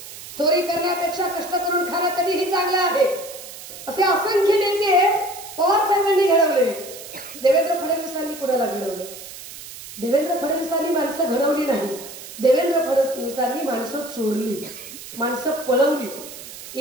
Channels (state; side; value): noise; right; hiss, 14 dB below the sound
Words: चोरी करण्यापेक्षा कष्ट करून खाणं कधीही चांगलं आहे. असे असंख्य नेते पवार साहेबांनी घडवले. देवेंद्र फडणवीसांनी कुणाला घडवलं? देवेंद्र फडणवीसांनी माणसं घडवली नाही, देवेंद्र फडणवीसांनी माणसं चोरली, माणसं पळवली.